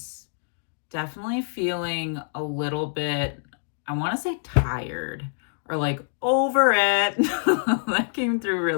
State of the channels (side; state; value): right; silent; digital silence